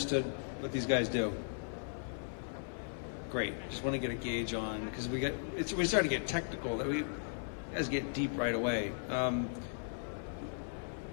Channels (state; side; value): silent; right; 53 dB below the other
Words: what these guys do? Great. Just want to get a gauge on, because we start to get technical. We guys get deep right away.